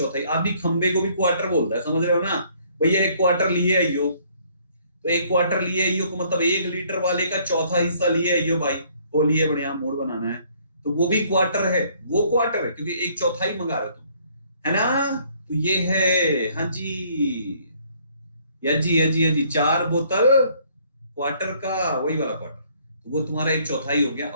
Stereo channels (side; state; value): both; inverted; correlation -0.62